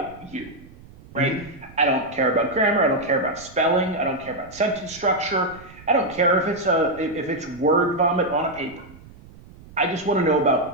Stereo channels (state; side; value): noise; right; rumble, 21 dB below the sound